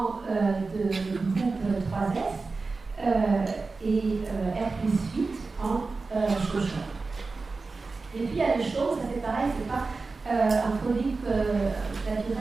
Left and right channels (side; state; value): left; quieter; 4.0 dB